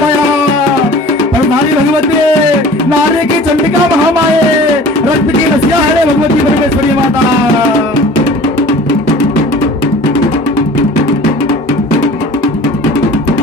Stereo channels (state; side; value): normal; both; correlation 0.44